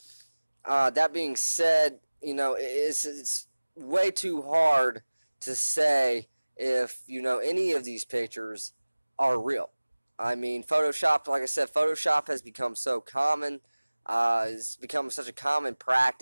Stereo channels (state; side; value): inverted; both; correlation -1.00